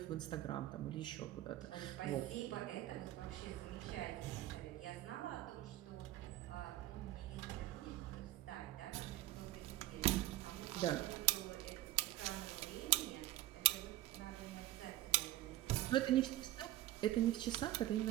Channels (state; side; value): quieter; left; 15.7 dB